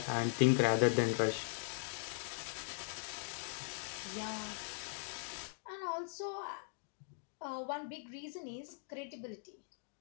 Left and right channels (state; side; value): silent; right; digital silence